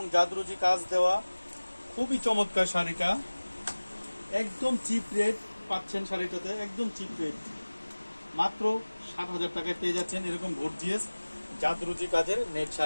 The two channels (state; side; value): inverted; both; correlation -1.00